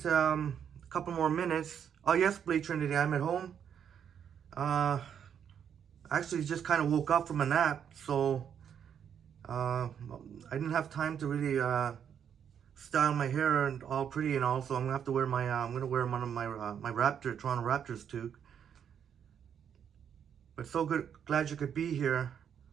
a couple more minutes. Oh, yes, Blake Trinity, I'm at home. Actually just kind of woke up from a nap, so I didn't have time to really style my hair and all pretty and all, so I'm gonna have to wear my I'm gonna wear one of my my Toronto Raptors toque. But so good, glad you could be here.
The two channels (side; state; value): left; quieter; 8.3 dB